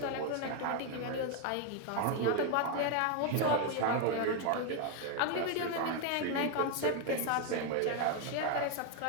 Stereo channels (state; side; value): different; both; correlation 0.01